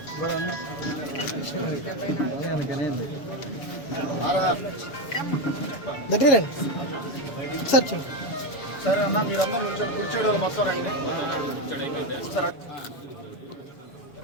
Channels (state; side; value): late; right; 7.0 ms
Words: దగ్గర సార్ సరే అన్న, మీరందరూ కూర్చోడం మొత్తం రండి